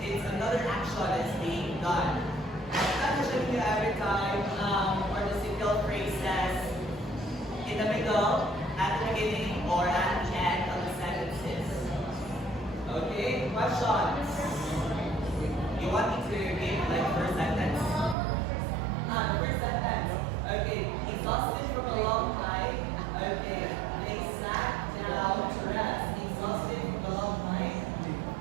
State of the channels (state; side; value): drops out; left; at 18.2 s